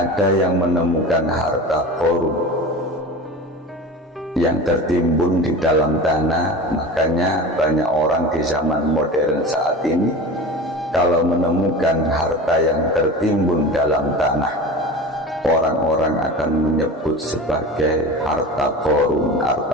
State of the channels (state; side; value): normal; both; correlation 0.32